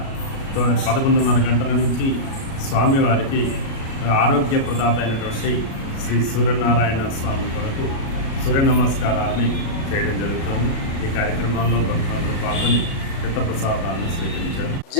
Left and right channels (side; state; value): right; late; 37 ms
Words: 11:30 గంటల నుంచి స్వామివారికి ఆరోగ్య ప్రదాత అయినటువంటి శ్రీ సూర్యనారాయణ స్వామి కొరకు సూర్య నమస్కారాన్ని చేయడం జరుగుతుంది. ఈ కార్యక్రమంలో భక్తులందరూ పాల్గొని తీర్థప్రసాదాలను స్వీకరించారు.